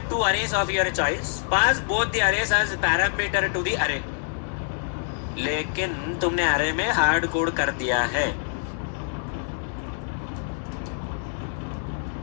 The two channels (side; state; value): right; silent; digital silence